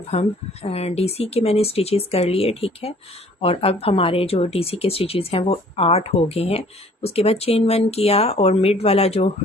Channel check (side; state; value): both; normal; correlation 0.55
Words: हम डीसी के मैंने स्टिचेस कर लिए, ठीक है। और अब हमारे जो डीसी के स्टिचेस हैं वो 8 हो गए हैं। उसके बाद चेन 1 किया और मिड वाला जो